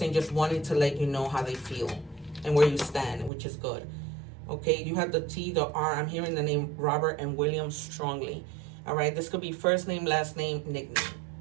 just wanting to let you know how they feel and where you stand, which is good. Okay, you have the T, the R. I'm hearing the name Robert and William strongly. All right, this could be first name, last name, nickname.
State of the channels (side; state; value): left; drops out; at 3.3 s